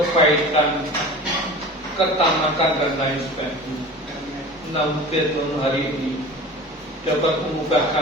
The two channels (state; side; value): normal; both; correlation 0.37